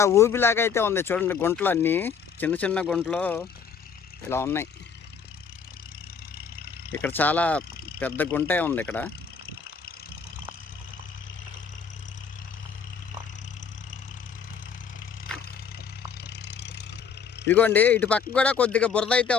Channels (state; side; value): quieter; right; 6.3 dB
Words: ఊబిలాగా అయితే ఉంది. చూడండి, గుంటలు అన్నీ చిన్న చిన్న గుంటలు ఇలా ఉన్నాయి. ఇక్కడ చాలా పెద్ద గుంటే ఉంది ఇక్కడ. ఇదిగోండి, ఇటు పక్క కూడా కొద్దిగా బురద అయితే